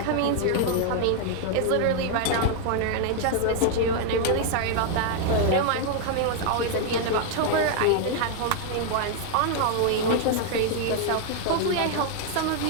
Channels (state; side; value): different; both; correlation 0.00